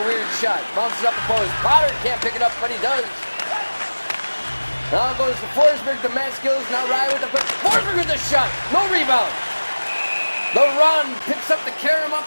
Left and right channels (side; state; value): both; inverted; correlation -1.00